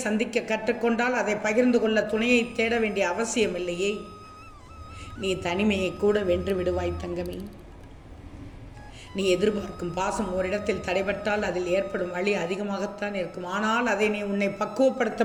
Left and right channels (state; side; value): identical; both; correlation 1.00